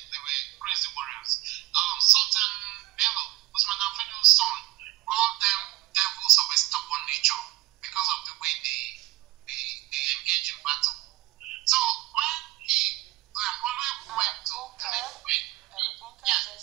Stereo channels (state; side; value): quieter; left; 19.2 dB